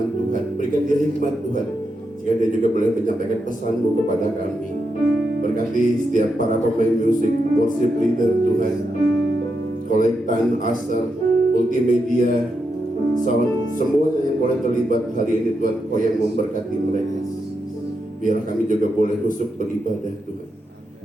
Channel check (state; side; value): normal; both; correlation 0.85